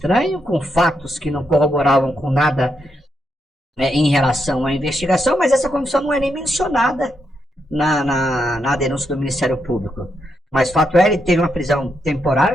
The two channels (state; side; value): normal; both; correlation 0.81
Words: com fatos que não corroboravam com nada em relação à investigação, mas essa confissão não é nem mencionada na denúncia do Ministério Público. Mas fato é, ele teve uma prisão